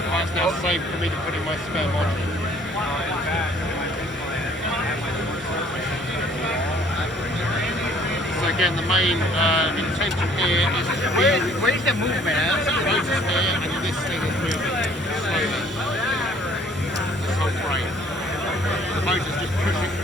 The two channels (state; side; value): normal; both; correlation 0.57